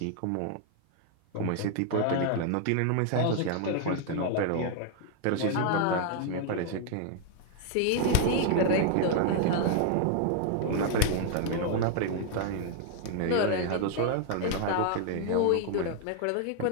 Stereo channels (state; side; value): different; both; correlation 0.00